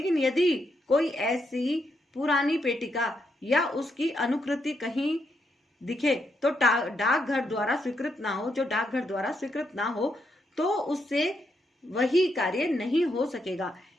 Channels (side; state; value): both; normal; correlation 0.79